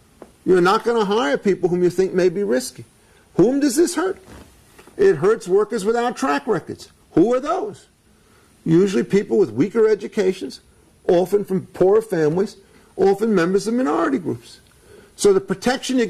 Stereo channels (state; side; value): identical; both; correlation 1.00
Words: you're not going to hire people whom you think may be risky. Whom does this hurt? It hurts workers without track records. Who are those? Usually people with weaker educations, often from poorer families, often members of minority groups. So the protection you